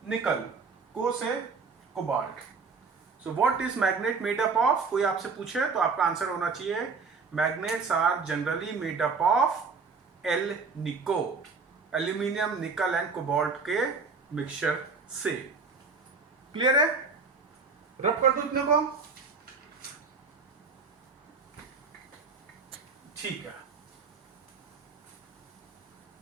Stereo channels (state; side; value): quieter; left; 4.7 dB